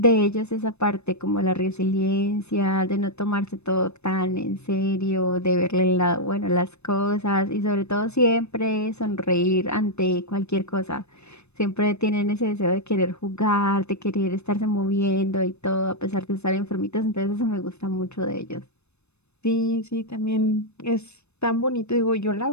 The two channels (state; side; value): late; right; 0.81 ms